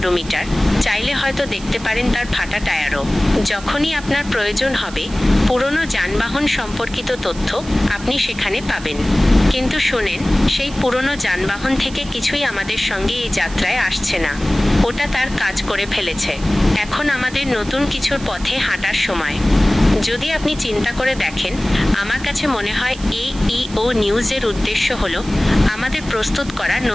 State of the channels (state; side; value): noise; right; hiss, 17 dB below the sound